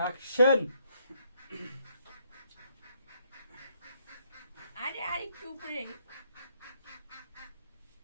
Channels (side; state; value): both; inverted; correlation -0.71